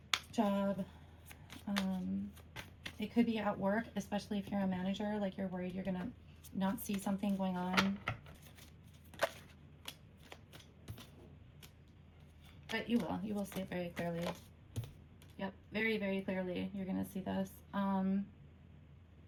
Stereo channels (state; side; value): identical; both; correlation 1.00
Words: job, it could be at work, especially if you're a manager, like you're worried you're going to not see something going on. But you will see it very clearly. Yep, very, very clearly you're going to see this.